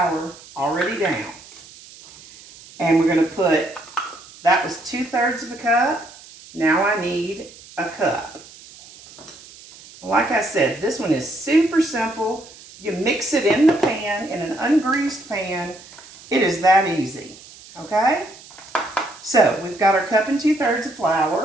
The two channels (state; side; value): noise; right; hiss, 20 dB below the sound